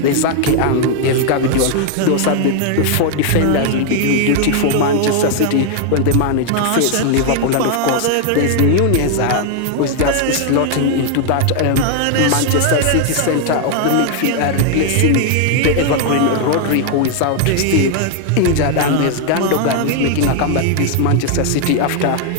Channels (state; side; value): different; both; correlation 0.00